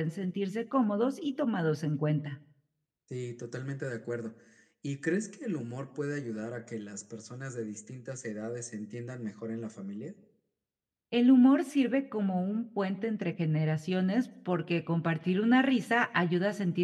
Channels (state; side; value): identical; both; correlation 1.00